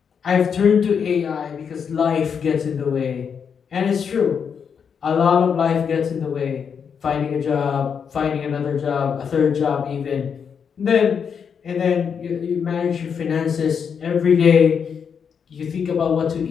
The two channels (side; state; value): right; quieter; 6.9 dB